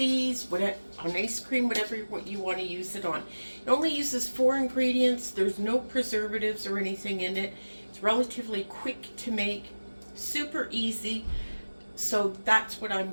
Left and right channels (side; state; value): both; inverted; correlation -1.00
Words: whatever, on ice cream, whatever what you want to use it on. It only uses 4 ingredients. There's no preservatives or anything in it. It's relatively quick to make, super easy. So that's what I'm